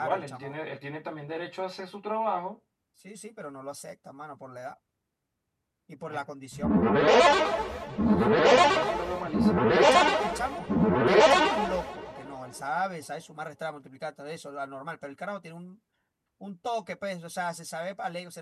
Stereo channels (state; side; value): identical; both; correlation 1.00